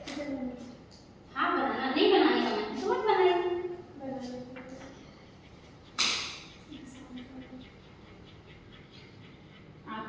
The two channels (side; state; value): both; identical; correlation 1.00